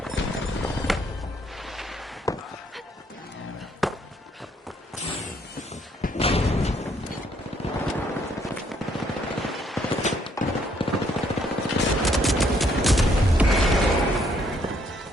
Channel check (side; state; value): both; normal; correlation 0.69